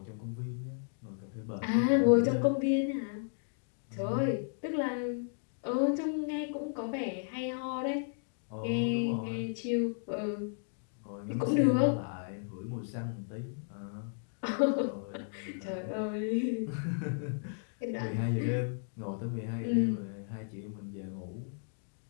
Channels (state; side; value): silent; right; digital silence